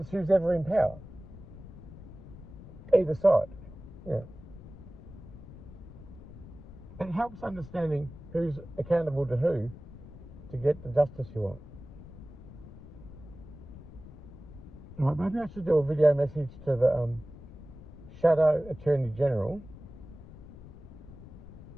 who's ever in power. Either side. Yeah. It helps understanding who's accountable to who to get the justice you want. Right, maybe I should do a video message to the Shadow Attorney General.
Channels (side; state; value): left; noise; rumble, 16 dB below the sound